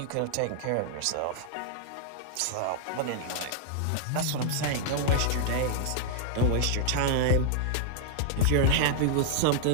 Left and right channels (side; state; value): both; different; correlation -0.01